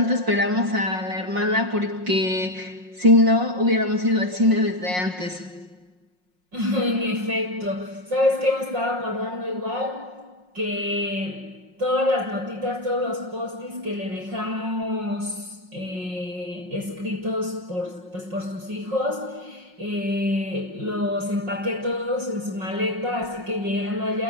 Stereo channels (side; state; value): left; late; 5.5 ms